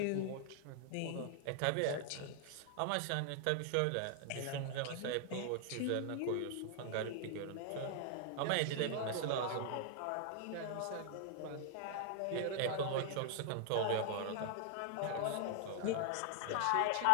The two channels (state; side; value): different; both; correlation 0.00